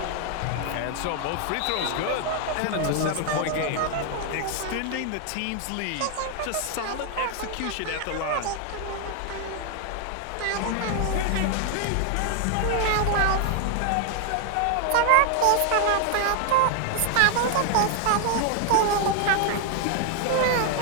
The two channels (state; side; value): different; both; correlation 0.00